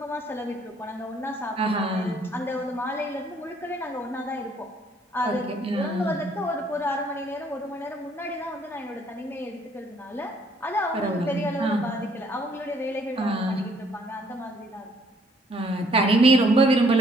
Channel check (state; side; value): normal; both; correlation 0.64